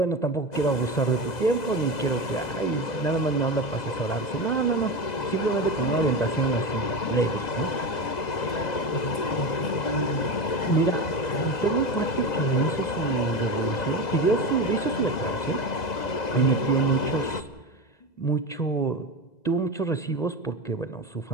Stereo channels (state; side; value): late; right; 2.0 ms